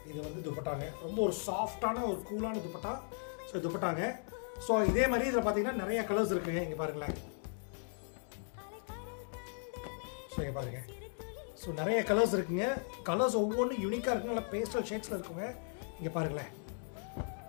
இது வந்து துப்பட்டாங்க. ரொம்ப ஒரு சாஃப்டான ஒரு கூலான துப்பட்டா. ஸோ துப்பட்டாங்க. ஸோ இதே மாதிரி இதில் பார்த்தீங்கன்னா நிறைய கலர்ஸ் இருக்குங்க. இங்கே பாருங்களேன். ஸோ இங்கே பாருங்கள். ஸோ நிறைய கலர்ஸ் இருக்குங்க. கலர்ஸ் ஒவ்வொன்றும் யூனிக்காக இருக்குங்க. நல்லா பேஸ்டல் ஷேட்ஸில் இருக்குங்க. இங்கே பாருங்களேன்.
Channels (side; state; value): right; silent; 53 dB below the other